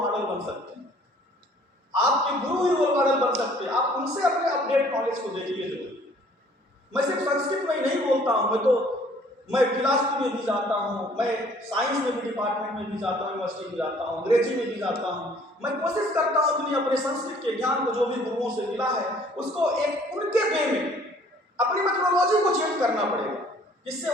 बन सकते हैं, आपके गुरु ही रोल मॉडल बन सकते हैं। आप उनसे अपने अपडेट नॉलेज को देखिए। मैं सिर्फ संस्कृत में ही नहीं बोलता हूँ, मैं फिलॉसफी में भी जाता हूँ, मैं साइंस में भी डिपार्टमेंट में भी जाता हूँ, यूनिवर्सिटी में जाता हूँ, अंग्रेजी में भी जाता हूँ। मैं कोशिश करता हूँ कि अपने संस्कृत के ज्ञान को जो भी गुरुओं से मिला है उसको एक उनके वे में अपनी मेथोडोलॉजी को चेंज करना पड़ेगा, जिससे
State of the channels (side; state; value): both; normal; correlation 0.57